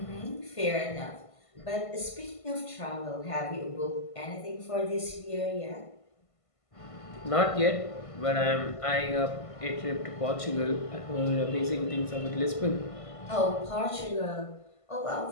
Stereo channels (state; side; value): late; right; 1.5 ms